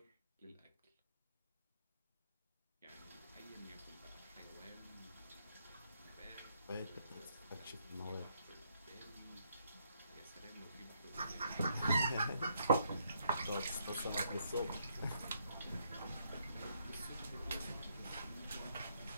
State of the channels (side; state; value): both; inverted; correlation -0.73